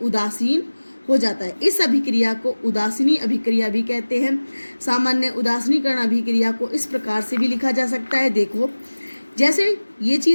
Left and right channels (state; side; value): inverted; both; correlation -1.00